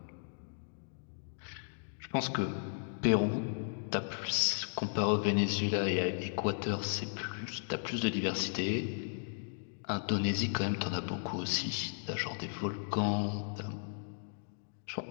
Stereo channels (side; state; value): right; silent; digital silence